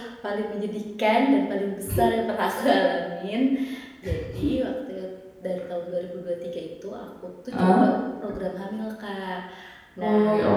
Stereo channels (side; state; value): both; identical; correlation 1.00